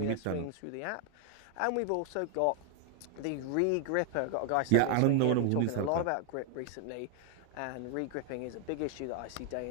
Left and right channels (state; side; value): different; both; correlation 0.00